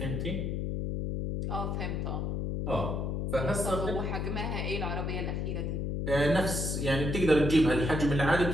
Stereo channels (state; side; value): noise; left; hum, 1 dB below the sound